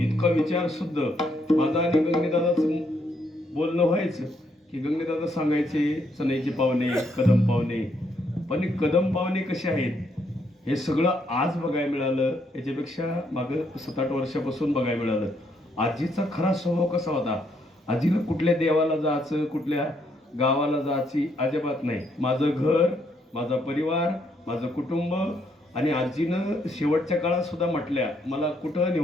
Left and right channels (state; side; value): normal; both; correlation 0.73